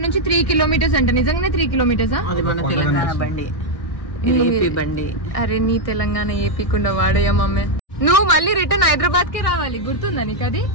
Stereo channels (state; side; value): late; right; 1.6 ms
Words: నుంచి 3 కిలోమీటర్స్ అంటే నిజంగానే 3 కిలోమీటర్స్. అరే నీ తెలంగాణ ఏపీకుండా వాడయ్యా మమ్మీ. నువ్వు మళ్ళీ రిటర్న్ హైదరాబాద్ కి రావాలి, గుర్తుందా నీకు అది?